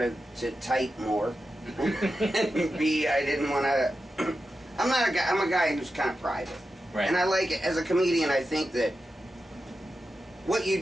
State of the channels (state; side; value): normal; both; correlation 0.90